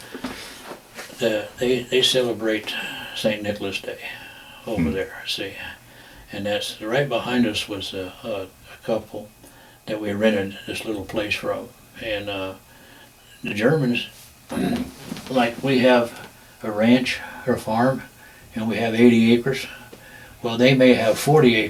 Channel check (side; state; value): both; identical; correlation 1.00